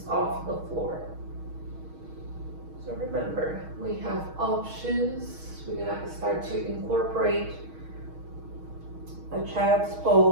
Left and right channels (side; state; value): left; late; 6.3 ms